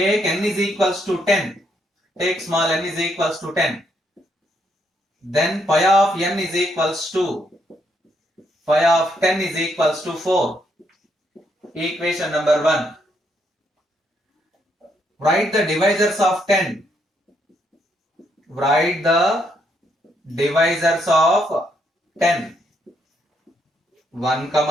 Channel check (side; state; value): both; normal; correlation 0.75